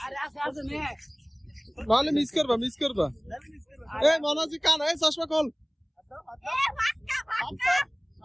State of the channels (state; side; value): identical; both; correlation 1.00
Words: নাহলে মিস করবা এই মনাজি কান এই চশমা খোল